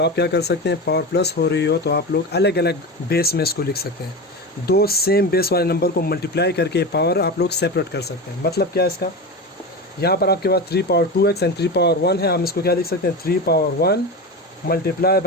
आप क्या कर सकते हैं, पावर प्लस हो रही हो तो आप लोग अलग अलग बेस में इसको लिख सकते हैं। दो सेम बेस वाले नंबर को मल्टीप्लाई करके पावर आप लोग सेपरेट कर सकते हैं। मतलब क्या है इसका, यहाँ पर आपके पास 3 पावर 2x एंड 3 पावर 1 है, हम इसको क्या लिख सकते हैं, 3 power 1 multiply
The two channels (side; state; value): both; normal; correlation 0.23